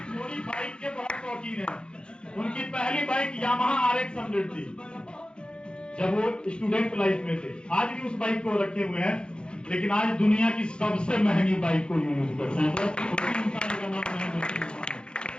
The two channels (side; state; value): right; late; 0.051 ms